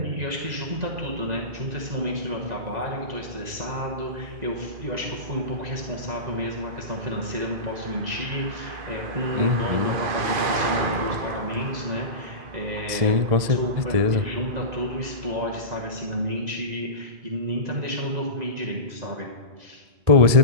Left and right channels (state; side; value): late; left; 2.0 ms